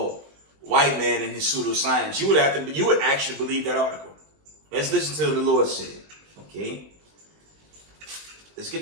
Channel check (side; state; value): left; late; 20 ms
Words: white man and his pseudoscience, you would actually believe that article. Let's listen to what the Lord said. Okay? Let's get